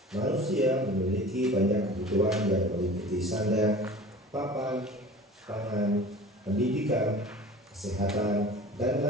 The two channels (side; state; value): both; normal; correlation 0.41